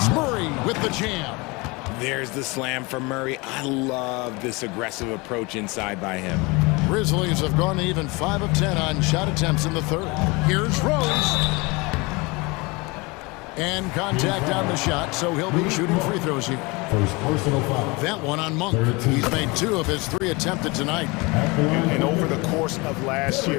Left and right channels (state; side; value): quieter; right; 25.8 dB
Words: Murray with the jam. There's the slam from Murray. I love this aggressive approach inside by him. Grizzlies have gone to even 5 of 10 on shot attempts in the third. Here's Rose. And contact on the shot, so he'll be shooting free throws here. First personal foul. That one on Monk. He's made 2 of his 3 attempted tonight. And over the course of last